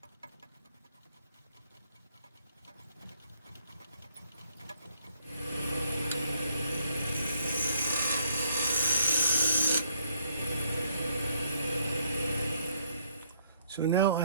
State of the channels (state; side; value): inverted; both; correlation -0.67